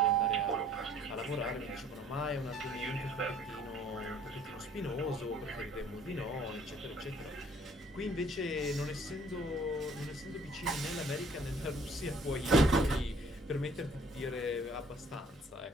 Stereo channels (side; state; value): both; normal; correlation 0.58